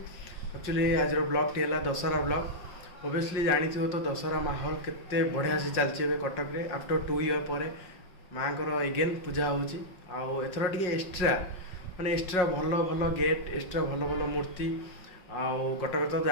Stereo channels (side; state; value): right; late; 5.5 ms